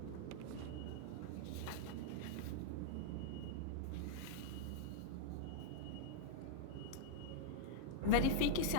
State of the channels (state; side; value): different; both; correlation -0.02